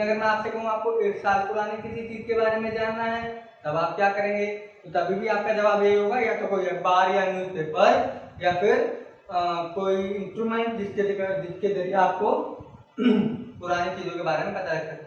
अगर मैं आपसे कहूँ आपको 1 साल पुरानी किसी चीज के बारे में जानना है तब आप क्या करेंगे? तो तभी भी आपका जवाब यही होगा, या तो कोई अखबार या न्यूज़पेपर या फिर कोई इंस्ट्रूमेंट जिसके जरिए आपको पुरानी चीजों के बारे में पता लग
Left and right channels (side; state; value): both; identical; correlation 1.00